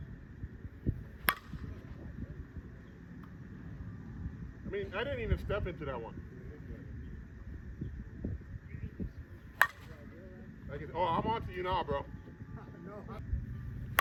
I mean, I didn't even step into that one. Oh, I'm on to you now, bro.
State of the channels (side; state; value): both; identical; correlation 1.00